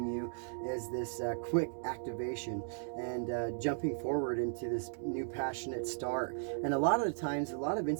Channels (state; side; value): silent; left; digital silence